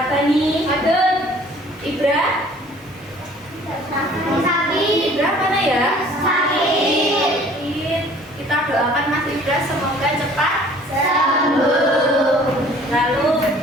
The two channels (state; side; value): normal; both; correlation 0.52